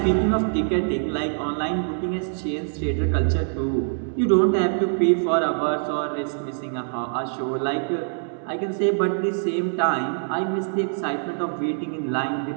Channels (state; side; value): silent; left; digital silence